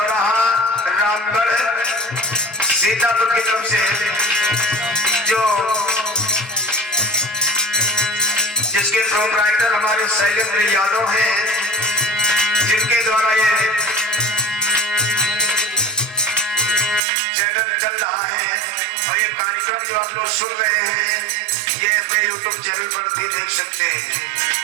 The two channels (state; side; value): drops out; left; at 17.0 s